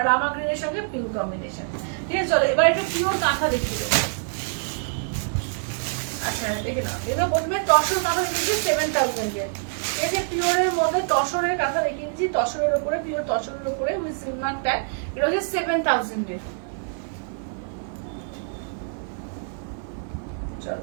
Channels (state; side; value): silent; left; 58 dB below the other